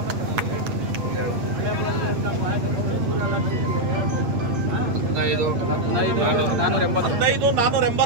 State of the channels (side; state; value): left; late; 8.5 ms